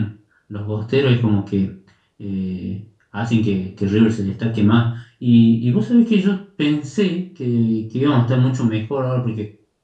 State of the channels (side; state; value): both; identical; correlation 1.00